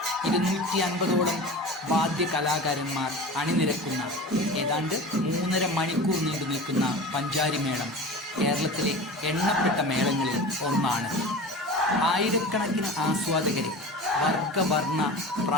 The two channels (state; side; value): normal; both; correlation 0.33